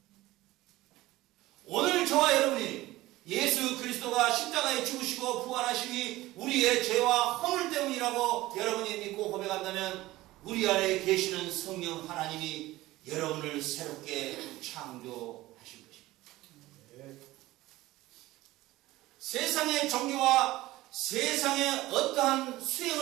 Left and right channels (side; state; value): left; quieter; 17.7 dB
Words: 오늘 저와 여러분이 예수 그리스도가 십자가에 죽으시고 부활하심이 우리의 죄와 허물 때문이라고 여러분이 믿고 고백한다면 우리 안에 계시는 성령 하나님이 여러분을 새롭게 창조하신 것입니다. 세상의 종교와 세상의 어떠한